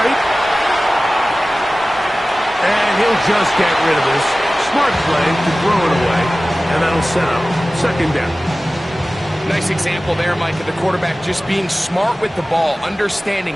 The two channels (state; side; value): normal; both; correlation 0.97